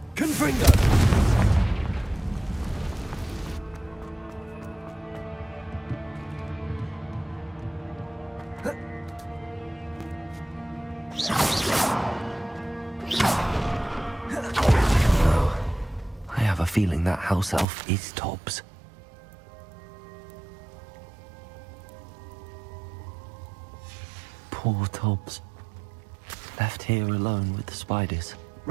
Confringo. I have a feeling that house elf is Tobbs. Poor Tobbs. Left here alone with the spiders.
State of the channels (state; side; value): drops out; left; at 17.7 s